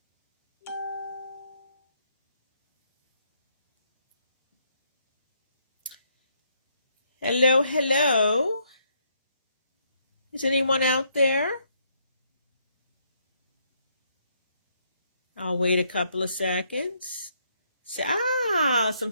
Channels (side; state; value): both; inverted; correlation -0.72